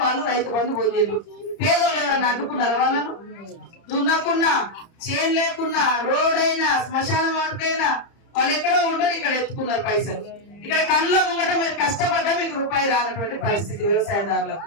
వాళ్ళు రైతు బంధు పొందిండ్రు. పేదోళ్ళు ఎవరైనా అడ్డుకున్నారా? వాళ్ళను దున్నకున్నా, చేను లేకున్నా, రోడ్ అయినా, శ్మశాన వాటికైనా వాళ్ళు ఎక్కడో ఉండరు, ఇక్కడ ఎత్తుకున్నారు పైసలు. ఇక్కడ కళ్ళ ముంగట మీరు కష్టపడ్డా మీకు రూపాయి రానటువంటి పరిస్థితి వ్యవసాయదారులకు.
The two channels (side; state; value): right; late; 30 ms